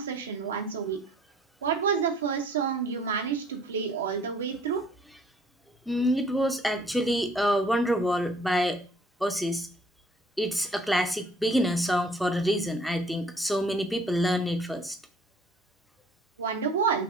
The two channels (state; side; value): normal; both; correlation 0.56